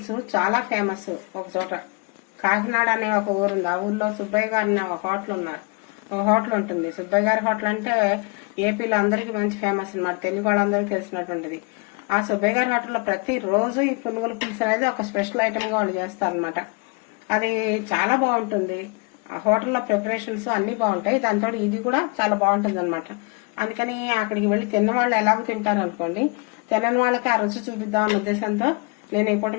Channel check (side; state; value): right; quieter; 31.3 dB